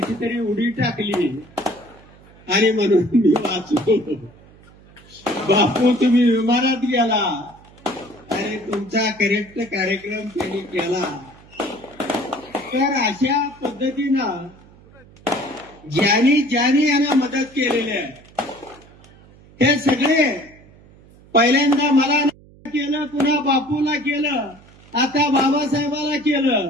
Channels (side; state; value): right; noise; hum, 25 dB below the sound